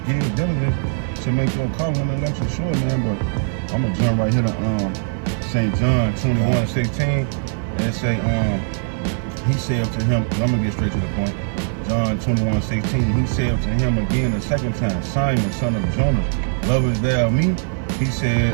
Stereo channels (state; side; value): silent; left; 56 dB below the other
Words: give diligence to make your calling and election sure, man. But I'm gonna jump right here to St. John 21:16, and it say, he said to him, I'm gonna get straight to the point. John 21:16, he said to him again the second time, Simon, son of Jonas, lovest thou me? He